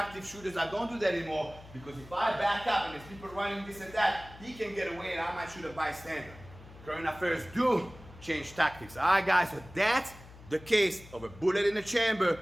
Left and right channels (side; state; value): left; noise; hum, 19 dB below the sound